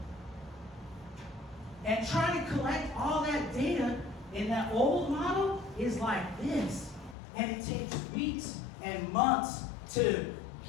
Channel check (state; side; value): drops out; right; at 7.2 s